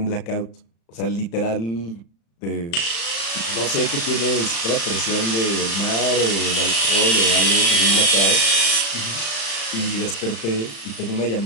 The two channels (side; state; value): right; late; 35 ms